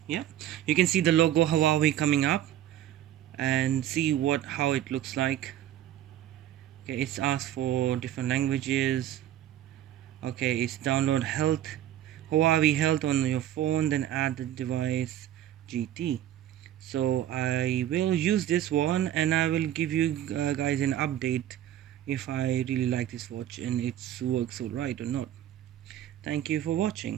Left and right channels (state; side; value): quieter; left; 12.0 dB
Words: Yeah, you can see the logo Huawei coming up and see how it looks like. Okay, it's asked for different languages. Okay, it's download Huawei Health on your phone, then add the device GT. So I will use this one and I will give you guys an update if I really like this watch and it works alright or not. Thank you for